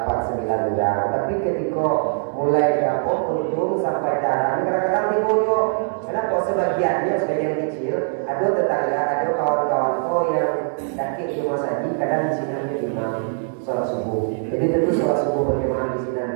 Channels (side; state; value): left; silent; digital silence